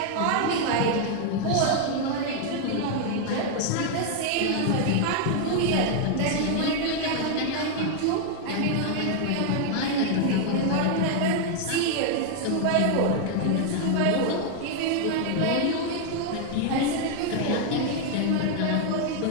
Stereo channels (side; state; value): both; different; correlation 0.00